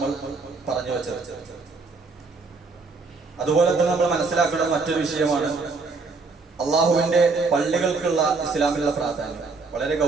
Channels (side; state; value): left; quieter; 4.1 dB